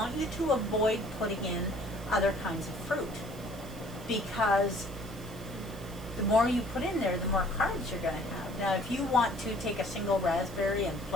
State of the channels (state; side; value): noise; right; hiss, 20 dB below the sound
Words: you to avoid putting in other kinds of fruit, because the more you put in there, the more carbs you're going to have. Now, if you want to take a single raspberry and